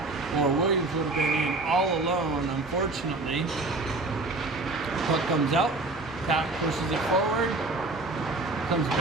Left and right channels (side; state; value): left; quieter; 3.2 dB